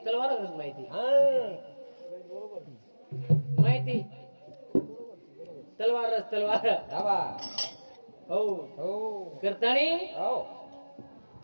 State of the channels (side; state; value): both; inverted; correlation -1.00